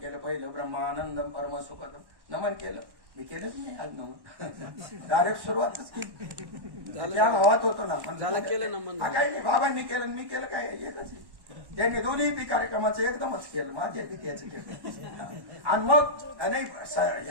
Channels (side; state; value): left; late; 1.1 ms